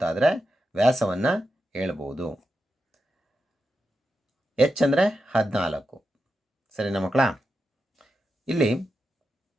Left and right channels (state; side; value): normal; both; correlation 0.88